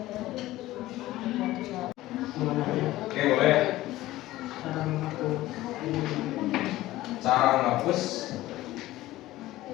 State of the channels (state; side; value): quieter; right; 16.5 dB